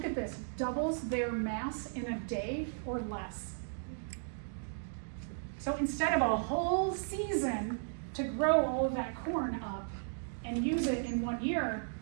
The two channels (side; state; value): left; silent; digital silence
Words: at this, doubles their mass in a day or less. So instead of a whole season to grow all of that corn up and use it in 1 year,